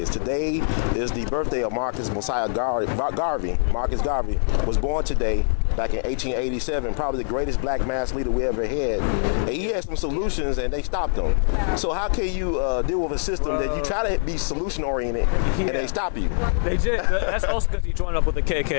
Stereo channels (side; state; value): right; silent; digital silence